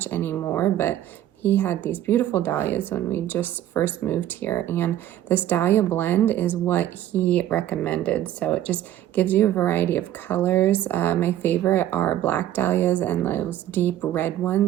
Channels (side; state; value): left; quieter; 12.5 dB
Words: anymore, but he had these beautiful dahlias when we just first moved here, and this dahlia blend is what he recommended. So it just gives you a variety of colors. My favorite are black dahlias and those deep red